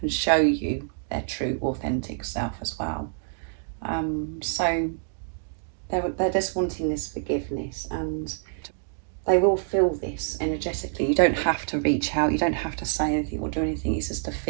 and show you their true authentic self as well. So they're just wanting this forgiveness, and they will feel this energetically. You don't have to reach out, you don't have to say anything or do anything, it's just a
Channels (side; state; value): left; silent; digital silence